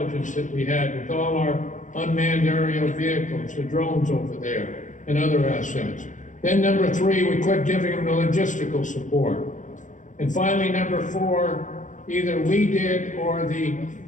that we had with all our unmanned aerial vehicles, the drones over there, and other assets. Then number three, we quit giving them the logistical support. And finally, number four, either we did or the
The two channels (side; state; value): right; late; 0.37 ms